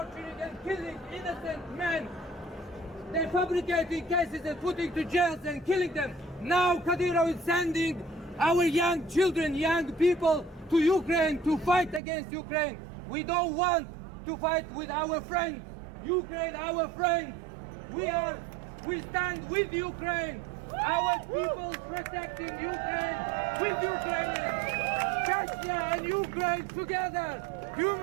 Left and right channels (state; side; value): drops out; left; at 12.0 s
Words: and killing innocent men. They're fabricating cases and putting to jails and killing them. Now Kadyrov is sending our young children, young people to Ukraine to fight against Ukraine. We don't want to fight with our friends. Ukraine, our friend. We stand with Ukraine. Our people protecting Ukraine with Ukrainians. Chechnya and Ukraine together.